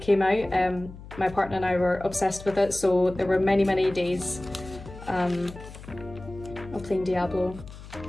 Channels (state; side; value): noise; left; hum, 15 dB below the sound